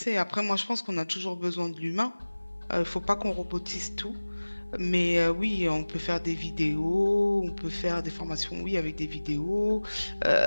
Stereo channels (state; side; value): inverted; both; correlation -1.00